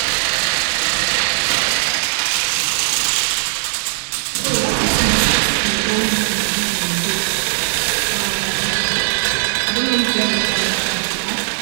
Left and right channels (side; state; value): left; silent; digital silence